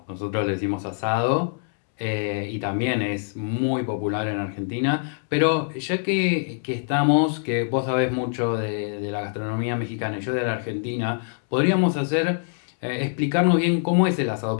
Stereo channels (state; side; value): silent; right; digital silence